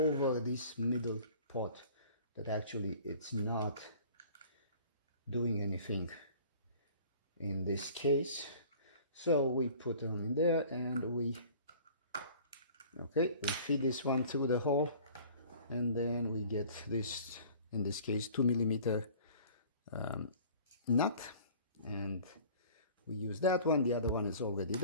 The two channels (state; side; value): inverted; both; correlation -0.48